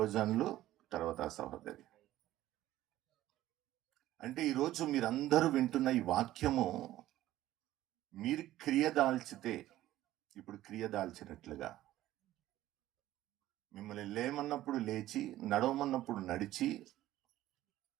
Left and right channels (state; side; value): quieter; left; 14.6 dB